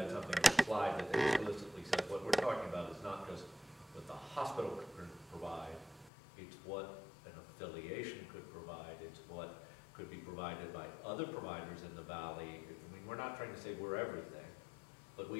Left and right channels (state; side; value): drops out; right; at 6.1 s